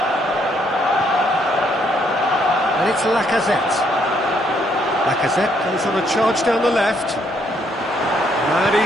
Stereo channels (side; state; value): both; normal; correlation 0.71